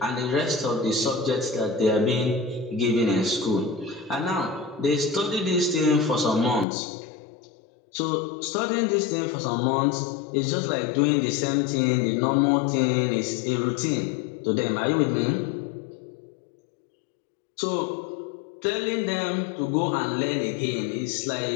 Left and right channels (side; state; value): right; drops out; at 6.7 s